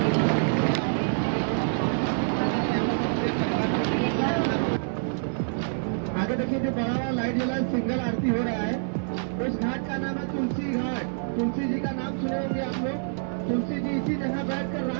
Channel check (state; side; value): silent; left; 57 dB below the other